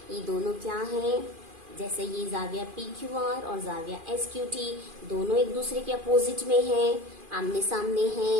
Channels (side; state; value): left; late; 2.4 ms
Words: ये दोनों क्या हैं, जैसे ये जाविया PQR और जाविया SQT दोनों एक दूसरे के अपोजिट में हैं, आमने सामने